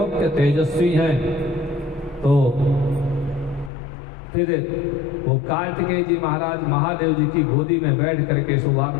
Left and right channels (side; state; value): right; drops out; at 3.7 s